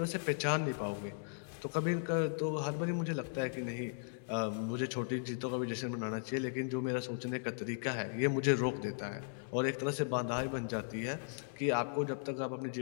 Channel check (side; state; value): right; silent; digital silence